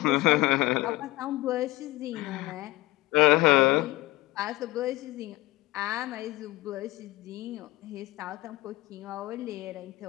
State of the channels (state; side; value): quieter; right; 19.3 dB